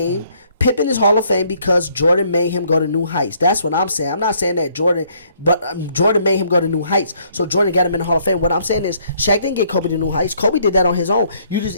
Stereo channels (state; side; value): inverted; both; correlation -0.66